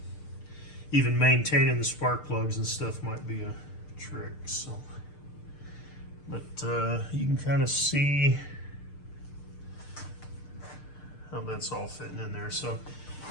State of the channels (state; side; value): late; right; 6.7 ms